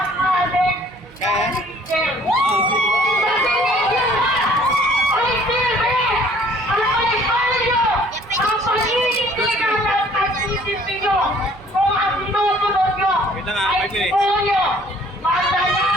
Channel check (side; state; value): right; noise; hum, 28 dB below the sound